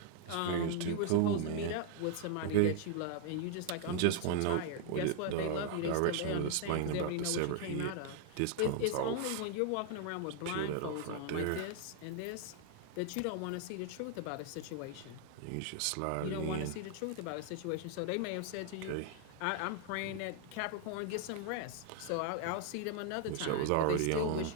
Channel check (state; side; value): different; both; correlation 0.00